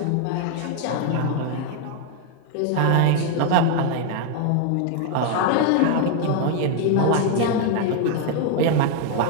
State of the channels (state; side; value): different; both; correlation 0.00